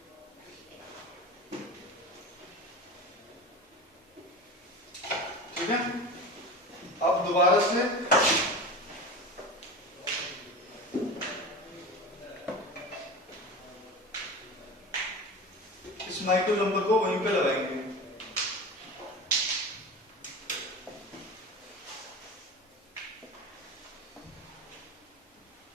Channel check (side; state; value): both; normal; correlation 0.31